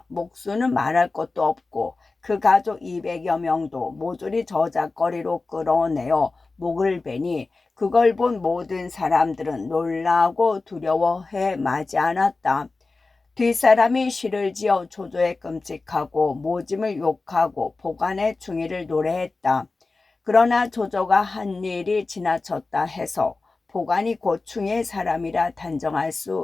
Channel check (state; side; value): quieter; right; 3.7 dB